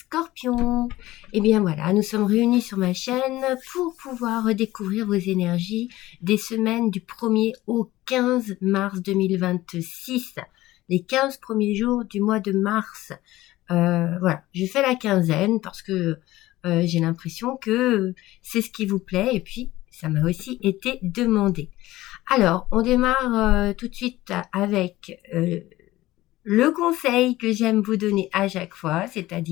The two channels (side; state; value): right; quieter; 16.9 dB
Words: Eh bien voilà, nous sommes réunis sur ma chaîne pour pouvoir redécouvrir vos énergies des semaines du 1er au 15 mars 2026. Les 15 premiers jours du mois de mars. Voilà, je fais la quinzaine parce que j'ai l'impression que c'est ce qui vous plaît et puis ça m'a aussi été demandé. Alors, on démarre tout de suite avec le conseil que j'aime vous donner à chaque fois,